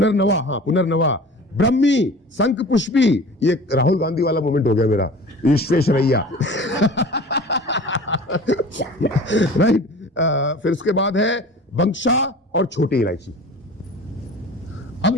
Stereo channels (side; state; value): both; normal; correlation 0.41